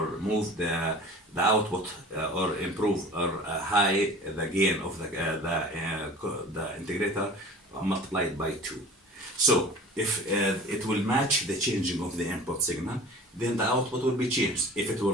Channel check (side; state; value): both; normal; correlation 0.41